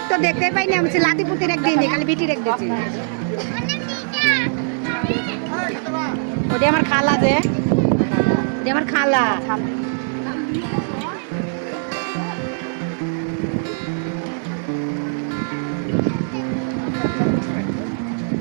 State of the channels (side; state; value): left; silent; digital silence